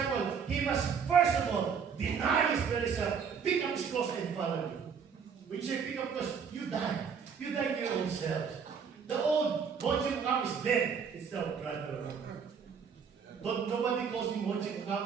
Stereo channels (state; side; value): quieter; left; 6.5 dB